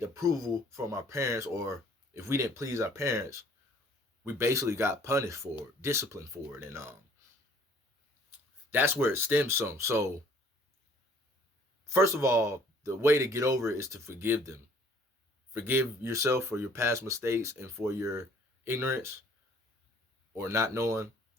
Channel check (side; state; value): both; normal; correlation 0.57